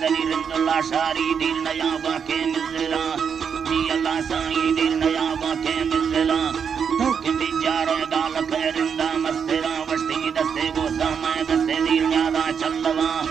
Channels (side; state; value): left; quieter; 7.0 dB